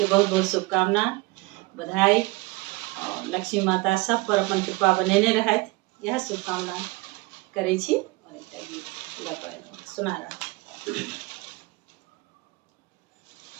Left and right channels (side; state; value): left; quieter; 23.3 dB